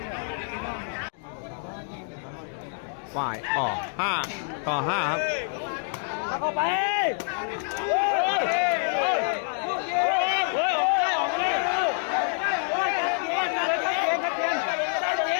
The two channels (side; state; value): right; silent; 57 dB below the other